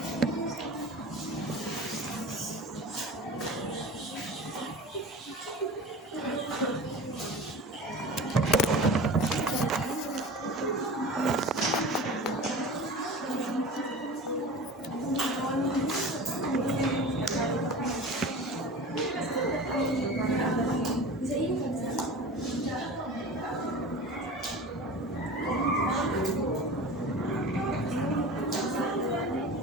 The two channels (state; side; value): normal; both; correlation 0.35